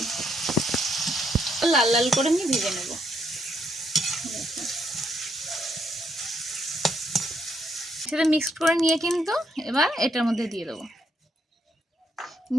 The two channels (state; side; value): normal; both; correlation 0.74